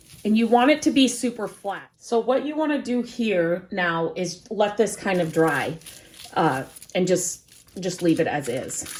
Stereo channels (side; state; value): both; identical; correlation 1.00